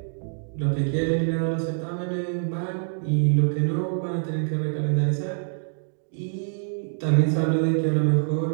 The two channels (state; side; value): silent; left; digital silence